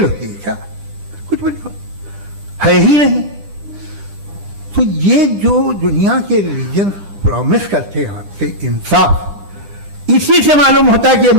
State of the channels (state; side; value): late; left; 9.9 ms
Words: होती है क्या? कुछ भी है ही नहीं। तो ये जो दुनिया के रिलीजन प्रॉमिस करते हैं आपसे इंसाफ, इसी से मालूम होता है कि ये